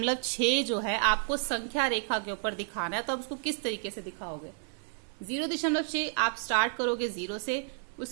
जो है आपको संख्या रेखा के ऊपर दिखाना है, तो आप उसको किस तरीके से दिखाओगे। 0.6 आप स्टार्ट करोगे 0 से,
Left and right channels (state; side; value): silent; left; digital silence